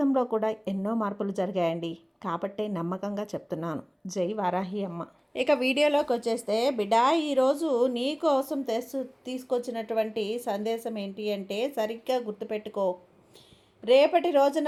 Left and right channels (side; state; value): both; identical; correlation 1.00